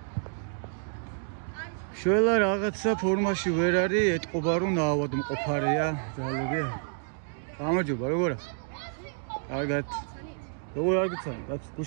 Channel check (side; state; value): left; silent; digital silence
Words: შველა რაღაცა ფორმაში ვერ არის, ეთყობა რომ ნაავადმყოფარია ძალები. გამარჯობა, როგორ ახ? კარგად. როგორ არ გიცანი? რაც